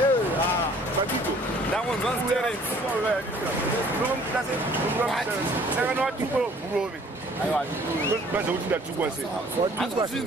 bakito ndango nzanzi terence nomklase saka watuka burobe aiwa baza kuti ndatukwa se watuka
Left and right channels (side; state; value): both; normal; correlation 0.56